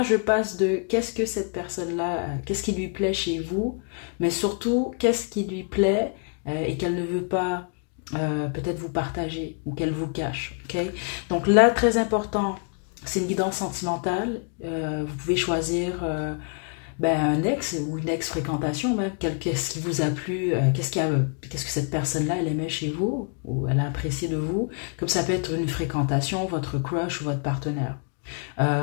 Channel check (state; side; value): quieter; right; 37.7 dB